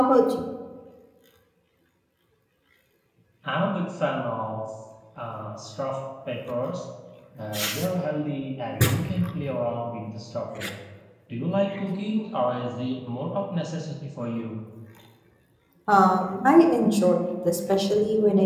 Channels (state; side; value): identical; both; correlation 1.00